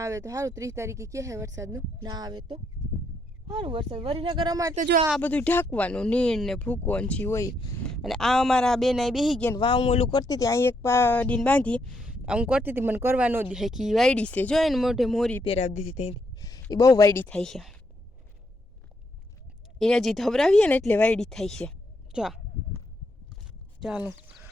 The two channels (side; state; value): both; normal; correlation 0.76